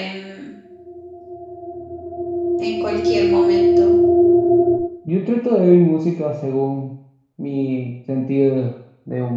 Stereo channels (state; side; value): identical; both; correlation 1.00